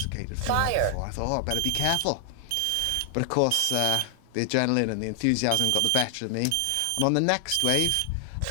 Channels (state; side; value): different; both; correlation 0.00